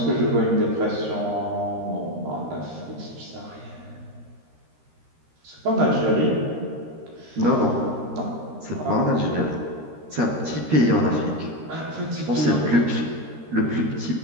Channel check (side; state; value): left; late; 13 ms